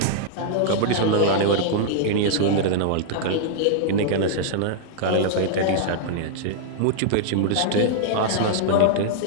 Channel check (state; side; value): different; both; correlation -0.01